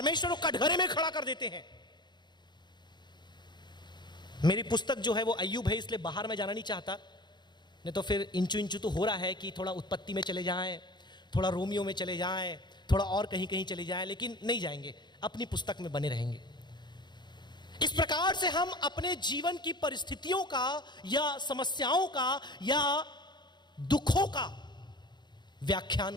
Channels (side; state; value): right; late; 0.21 ms